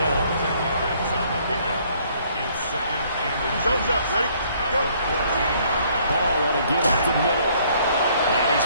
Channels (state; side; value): inverted; both; correlation -0.63